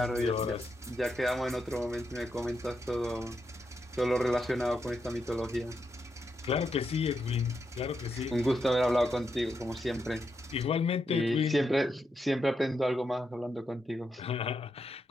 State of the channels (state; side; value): normal; both; correlation 0.83